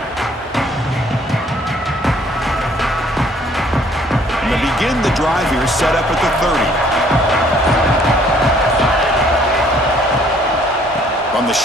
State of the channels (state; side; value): normal; both; correlation 0.61